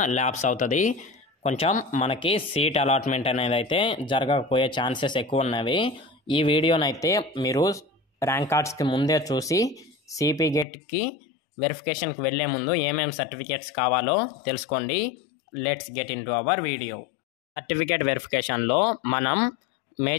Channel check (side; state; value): right; drops out; at 10.7 s